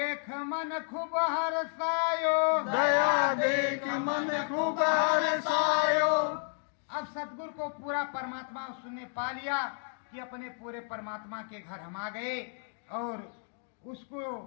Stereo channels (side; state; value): right; silent; 57 dB below the other